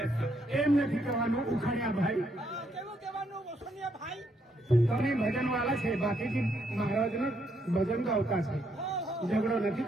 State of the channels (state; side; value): normal; both; correlation 0.74